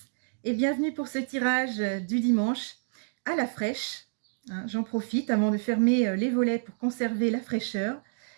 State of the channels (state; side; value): silent; left; digital silence